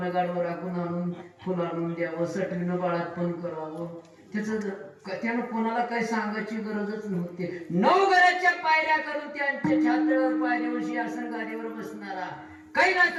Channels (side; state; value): both; identical; correlation 1.00